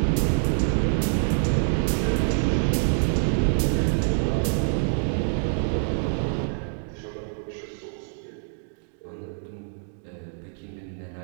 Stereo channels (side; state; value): left; silent; digital silence